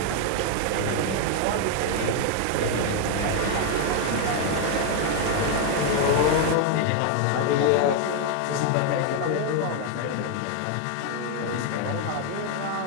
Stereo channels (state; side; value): different; both; correlation 0.00